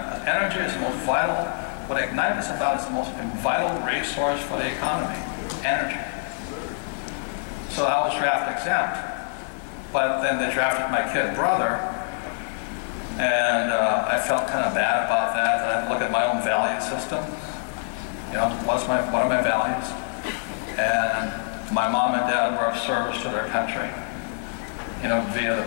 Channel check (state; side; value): silent; right; digital silence